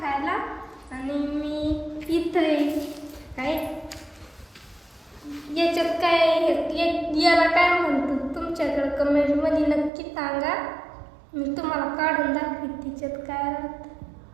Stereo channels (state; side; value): drops out; left; at 9.9 s